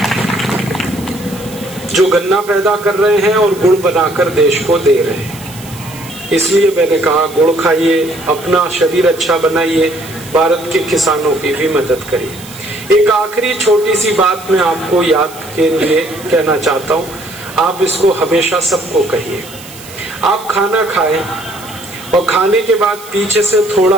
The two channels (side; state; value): right; noise; hiss, 17 dB below the sound